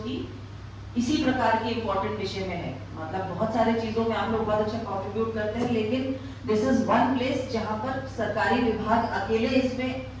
की इसी प्रकार की इंपॉर्टेंट विषय में है। मतलब बहुत सारे चीजों में आप लोग बहुत अच्छा कंट्रीब्यूट करते हैं, लेकिन दिस इज वन प्लेस जहां पर सरकारी विभाग अकेले इसमें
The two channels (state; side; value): identical; both; correlation 1.00